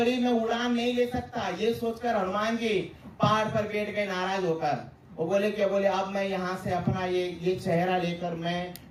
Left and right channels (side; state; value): both; identical; correlation 1.00